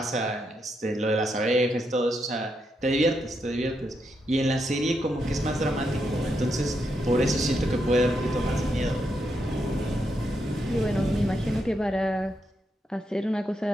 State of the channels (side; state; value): both; normal; correlation 0.81